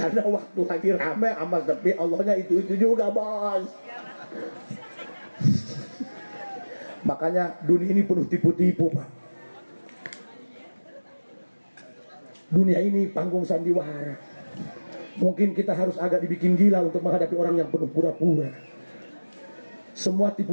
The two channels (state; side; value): inverted; both; correlation -1.00